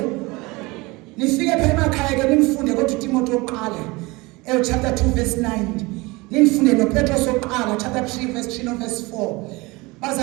Nifike pha emakhaya ke nimfunde kodwa uTimothi wokuqala chapter 2 verse 9. Nifunde noPetros wokuqala chapter 3 verse 3 no verse 4.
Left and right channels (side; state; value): left; quieter; 23.5 dB